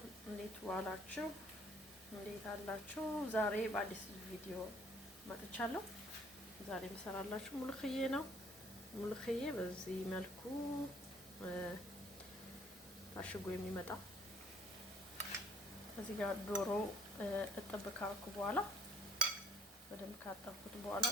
እንዴት ዋላችሁ? እንዴት አላችሁ? ዛሬ በአዲስ ቪዲዮ መጥቻለሁ። ዛሬ የምሰራላችሁ ሙልክዬ ነው። ሙልክዬ በዚህ መልኩ ታሽጎ የሚመጣ እዚህ ጋር ዶሮ እጥብ ካረኩ በኋላ በደንብ ካጠብኩት በኋላ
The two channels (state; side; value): normal; both; correlation 0.60